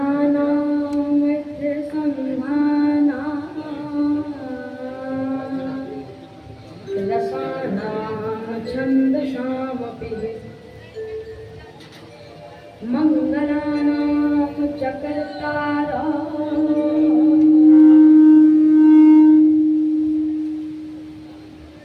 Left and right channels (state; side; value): identical; both; correlation 1.00